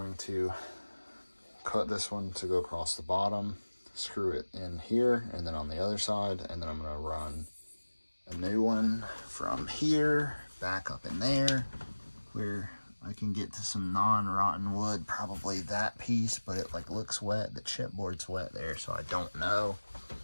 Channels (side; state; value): both; inverted; correlation -1.00